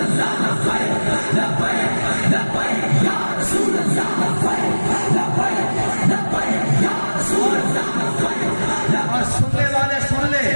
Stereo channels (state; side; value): inverted; both; correlation -1.00